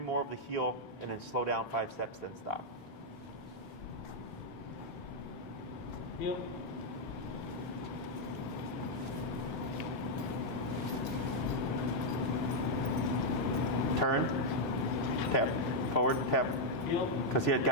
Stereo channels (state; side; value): normal; both; correlation -0.02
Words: of the heel and then slow down 5 steps, then stop. Heel. Turn. Tap. Forward. Tap. Heel. Because he had